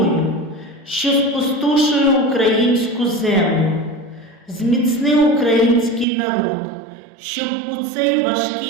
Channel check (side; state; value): left; drops out; at 6.1 s